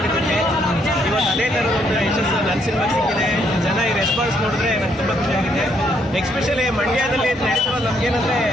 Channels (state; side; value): normal; both; correlation 0.72